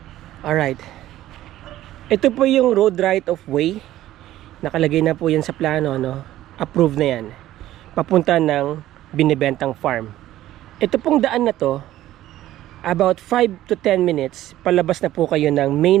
Alright. Ito po yung road right of way. Nakalagay na po yan sa plano, no? Approved na yan. Papunta ng binibentang farm. Ito pong daan na to, about 5 to 10 minutes, palabas na po kayo ng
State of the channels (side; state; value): left; quieter; 14.1 dB